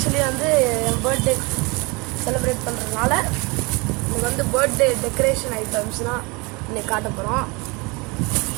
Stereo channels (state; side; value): quieter; left; 27.2 dB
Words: வந்து என் பர்த்டே செலிப்ரேட் பண்ணுறதுனால இன்றைக்கி வந்து பர்த்டே டெக்கரேஷன் ஐட்டம்ஸ்லாம் இன்றைக்கி காட்ட போகிறோம்.